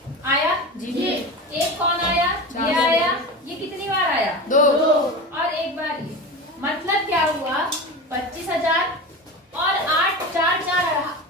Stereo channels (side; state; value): both; normal; correlation 0.27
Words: आया जी। एक कौन आया? ये आया। ये कितनी बार आया? 2। और एक बार ये। मतलब क्या हुआ? 25,000 और